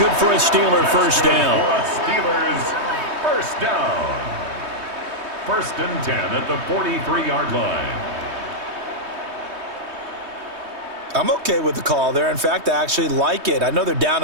good for a Steeler first down. Steelers first down. 1st and 10 at the 43-yard line. I'm okay with the call there. In fact, I actually like it. I know they're down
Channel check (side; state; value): left; late; 3.2 ms